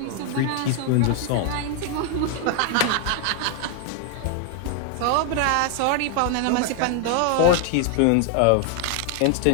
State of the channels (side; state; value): both; different; correlation 0.00